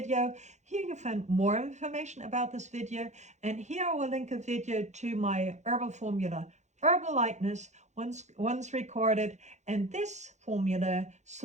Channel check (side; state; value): left; late; 0.34 ms